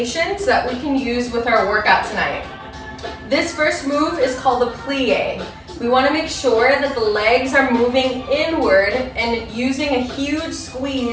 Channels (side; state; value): both; identical; correlation 1.00